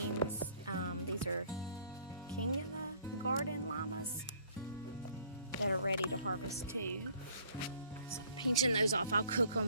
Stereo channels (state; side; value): inverted; both; correlation -0.58